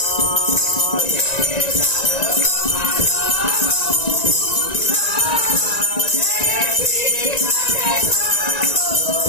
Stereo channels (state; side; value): late; right; 1.9 ms